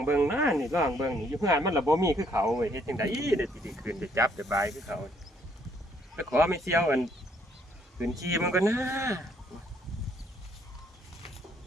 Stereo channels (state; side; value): normal; both; correlation 0.67